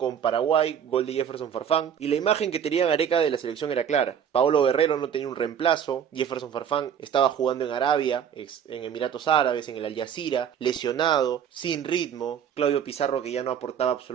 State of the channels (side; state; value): left; quieter; 8.4 dB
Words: Paraguay, gol de Jefferson Farfán, y la imagen que tenía Gareca de la selección era clara. Paolo Guerrero no tenía un reemplazo, Jefferson Farfán estaba jugando en Arabia, en Emiratos Árabes, en el Al Jazeera, lesionado, sin ritmo, Claudio Pizarro que ya no aportaba